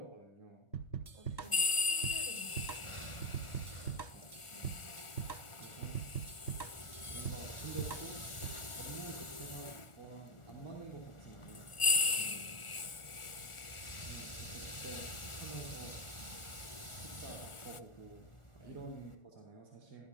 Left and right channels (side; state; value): right; late; 1.4 ms